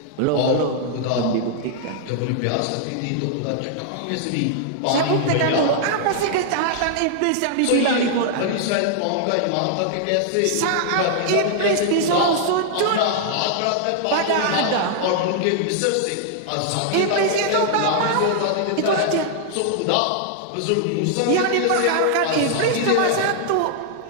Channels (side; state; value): both; different; correlation -0.01